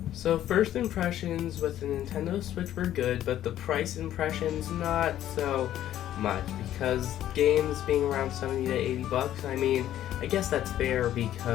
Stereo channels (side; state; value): right; quieter; 12.1 dB